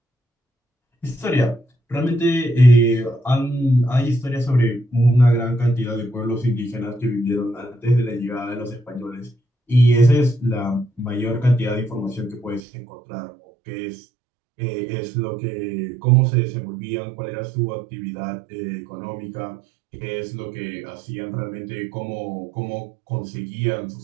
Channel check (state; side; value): drops out; left; at 12.6 s